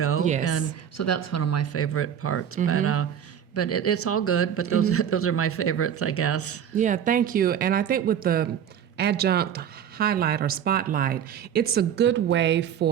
Yes. And so that's one of my favorite parts. But it's all good, but those are my favorites, I guess. Yeah, thank you. And I think with the adjunct highlight or spotlight, it's a good way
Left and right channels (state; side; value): quieter; left; 8.9 dB